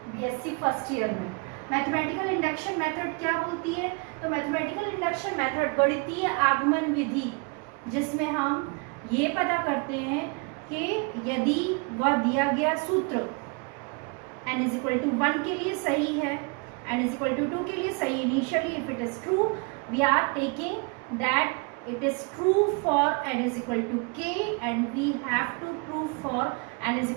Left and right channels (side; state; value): left; quieter; 32.0 dB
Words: BSc फर्स्ट ईयर में। मैथमेटिकल इंडक्शन मेथड क्या बोलती है? तो मैथमेटिकल इंडक्शन मेथड गणितीय आगमन विधि, जिसमें हम ये पता करते हैं कि यदि वह दिया गया सूत्र n इज इक्वल टू 1 के लिए सही है, n इज इक्वल टू 2 के लिए सही initially, if it is true we are taking that it is true for n is equal to k and we have to prove for n is